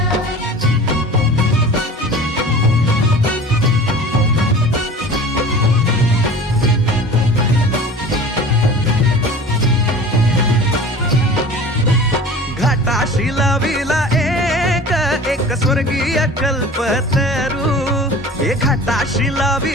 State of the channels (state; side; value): normal; both; correlation 0.40